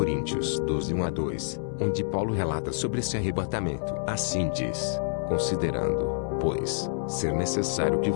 12, 1-2, onde Paulo relata sobre esse arrebatamento. Assim diz: considerando, pois, ser necessário que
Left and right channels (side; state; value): right; silent; 60 dB below the other